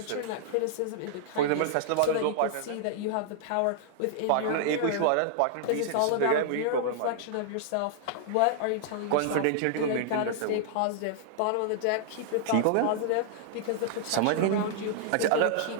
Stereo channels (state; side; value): different; both; correlation -0.01